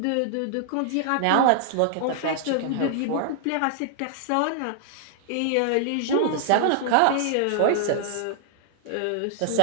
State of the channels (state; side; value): different; both; correlation -0.01